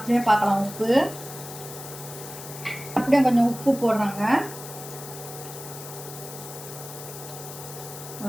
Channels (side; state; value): left; noise; hiss, 12 dB below the sound